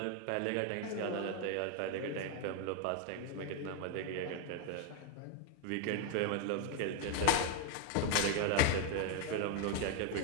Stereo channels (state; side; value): different; both; correlation 0.01